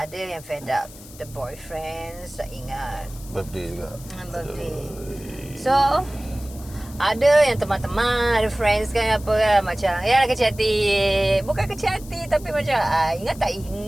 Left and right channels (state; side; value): noise; left; hiss, 19 dB below the sound